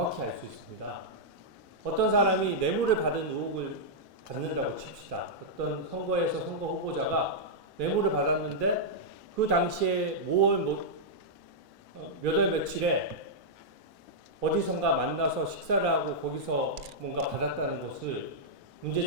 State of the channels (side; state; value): both; normal; correlation -0.08